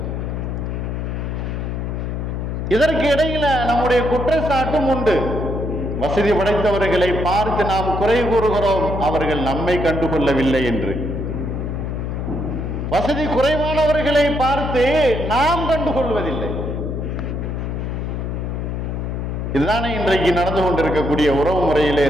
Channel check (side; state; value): left; noise; hum, 3 dB below the sound